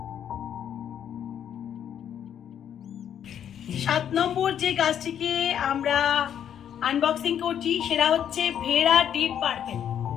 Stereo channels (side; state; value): right; quieter; 9.3 dB